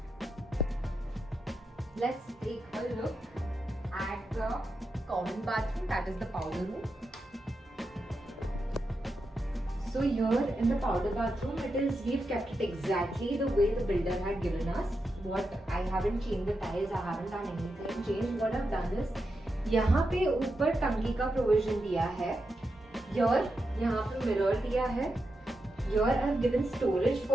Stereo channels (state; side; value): normal; both; correlation 0.87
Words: Let's take a look at the common bathroom, that is the powder room. So here in the powder bathroom, we've kept it exactly the way the builder had given us. I haven't changed the tiles, I haven't done anything changed. What I've done is, यहाँ पे ऊपर टंकी का provision दिया है. Here यहाँ पे mirror दिया है. Here I've given storage